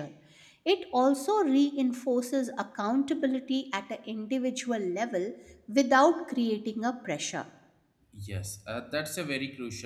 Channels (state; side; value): identical; both; correlation 1.00